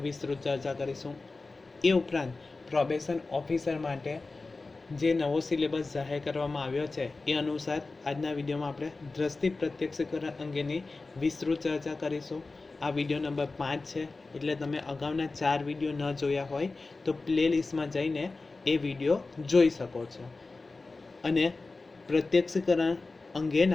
વિસ્તૃત ચર્ચા કરીશું. એ ઉપરાંત પ્રોબેશન ઓફિસર માટે જે નવો સિલેબસ જાહેર કરવામાં આવ્યો છે એ અનુસાર આજના વિડીયોમાં આપણે દ્રષ્ટિ પ્રત્યક્ષીકરણ અંગેની વિસ્તૃત ચર્ચા કરીશું. આ વિડીયો નંબર 5 છે, એટલે તમે અગાઉના 4 વિડીયો ન જોયા હોય તો પ્લેલિસ્ટમાં જઈને એ વિડીયો જોઈ શકો છો. અને પ્રત્યક્ષીકરણ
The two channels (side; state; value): right; quieter; 3.6 dB